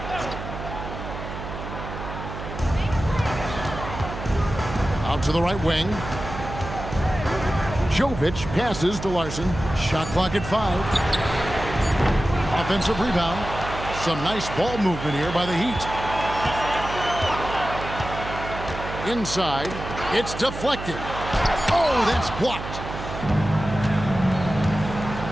Out to the right wing. Jovic passes to Larson. Shot clock at 5. Offensive rebound. Some nice ball movement here by the Heat. Inside. It's deflected. Oh, that's blocked.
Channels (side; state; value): right; noise; hum, 8 dB below the sound